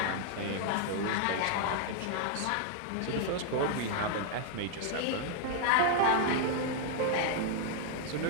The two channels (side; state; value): both; different; correlation -0.01